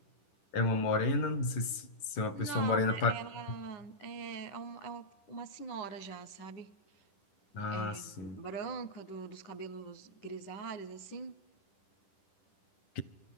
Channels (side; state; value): right; late; 10 ms